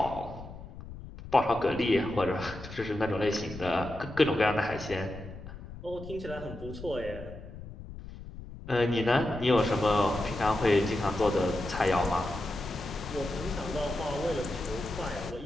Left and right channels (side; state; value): left; noise; rumble, 13 dB below the sound